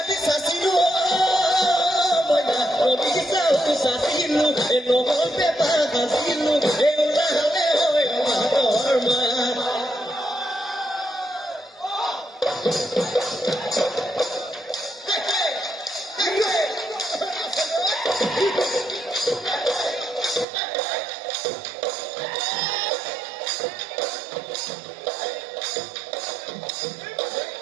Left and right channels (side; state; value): left; drops out; at 20.5 s